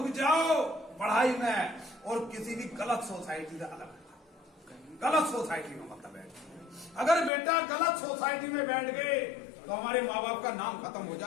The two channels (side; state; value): right; drops out; at 7.3 s